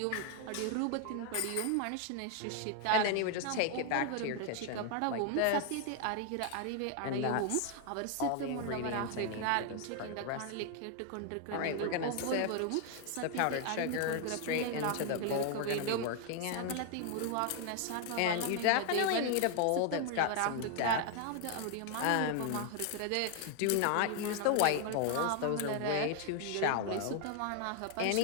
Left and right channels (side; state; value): both; different; correlation 0.00